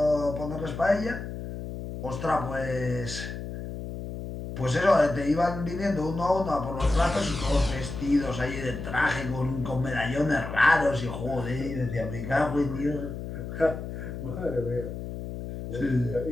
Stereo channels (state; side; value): noise; left; hum, 8 dB below the sound